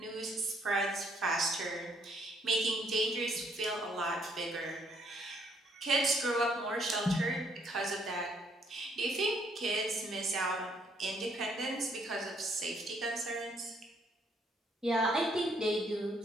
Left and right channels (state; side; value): normal; both; correlation 0.68